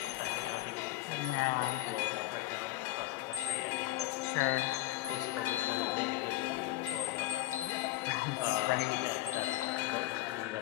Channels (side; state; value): right; quieter; 16.4 dB